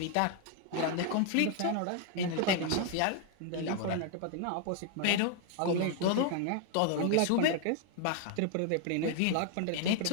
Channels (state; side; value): different; both; correlation 0.00